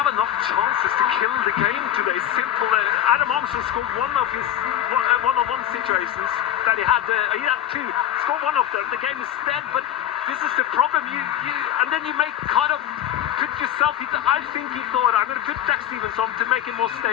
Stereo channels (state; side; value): quieter; right; 11.7 dB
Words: enough chances to kill the game today. Simple. Adam Armstrong scored one of his one-on-one situations that he had. He had two. Scored one of them. The game is dead. But this is the problem. And then you make kind of put yourself. I think he thought, I'm going to put Jack Stevens on to make it more